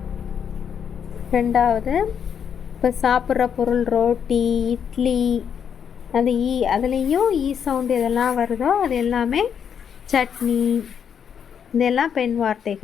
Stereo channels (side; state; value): right; quieter; 7.8 dB